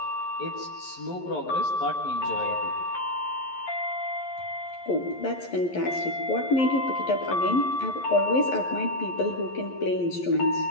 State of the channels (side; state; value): right; late; 11 ms